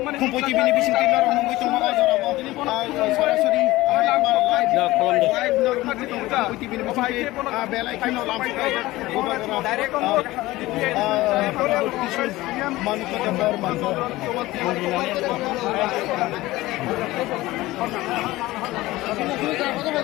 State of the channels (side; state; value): right; quieter; 18.3 dB